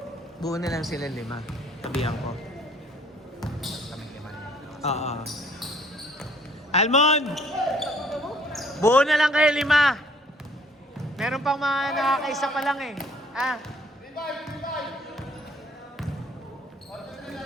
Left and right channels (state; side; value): normal; both; correlation 0.60